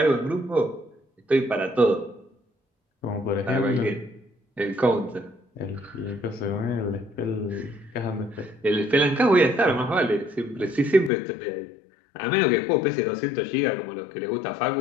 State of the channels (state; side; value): drops out; right; at 11.1 s